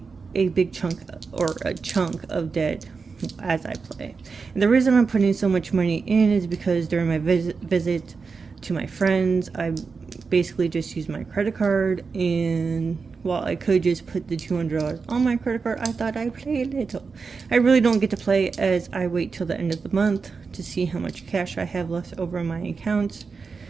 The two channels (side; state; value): left; quieter; 4.9 dB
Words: a big chunk of debt as I play. And the reason I'm putting so much money in is because during my visit to my friends, I basically just used my credit card, and while I could just put the $200 on my credit card, I thought I'd play a little. I really don't get to play, as I wait till the end of the month to see how much cash I have left over in my accounts